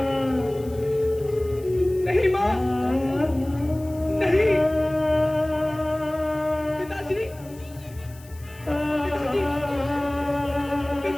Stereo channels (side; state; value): left; noise; hiss, 23 dB below the sound